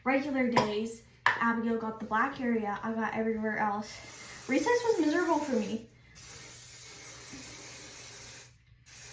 Regular days, Abigail got the black area. I got everywhere else. Recess was miserable for me.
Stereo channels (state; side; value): identical; both; correlation 1.00